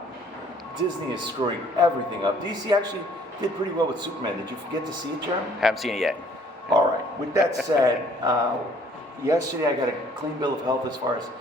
Disney is screwing everything up. DC actually did pretty well with Superman. Did you get to see it, Jeremy? Haven't seen it yet. All right. With that said, yesterday I got a clean bill of health as far as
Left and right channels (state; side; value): normal; both; correlation 0.59